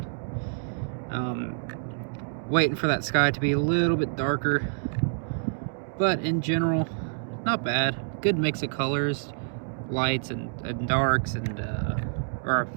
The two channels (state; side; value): silent; left; digital silence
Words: Waiting for that sky to be a little bit darker, but in general, not bad. Good mix of colors, lights and darks, and